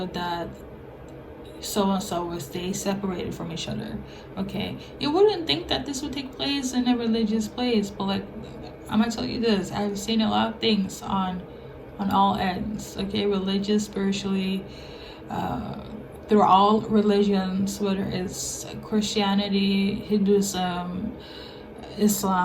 that so and so will stay separated from each other. Okay, you wouldn't think that this would take place in a religious place, but like, I'm gonna tell you this, I've seen a lot of things on all ends. Okay, religious, spiritually, through all religions, whether it's Christianity, Hinduism,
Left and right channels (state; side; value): identical; both; correlation 1.00